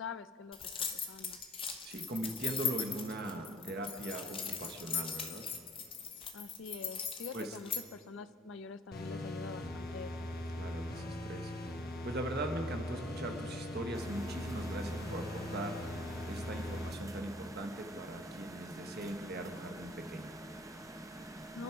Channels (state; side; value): normal; both; correlation 0.56